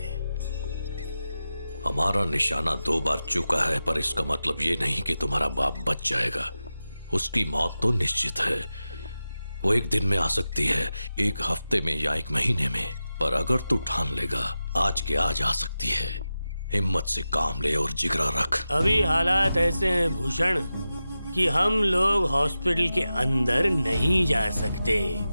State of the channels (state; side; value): inverted; both; correlation -0.93